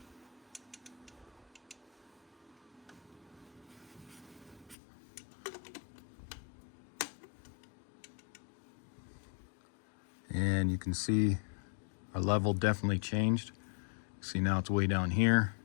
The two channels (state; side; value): drops out; right; at 4.8 s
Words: And you can see our level definitely changed. See, now it's way down here.